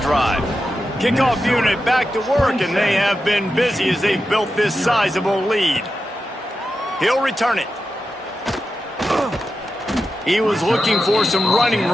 Kickoff unit back to work, and they have been busy as they've built this sizable lead. He'll return it. He was looking for some running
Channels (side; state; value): both; normal; correlation 0.90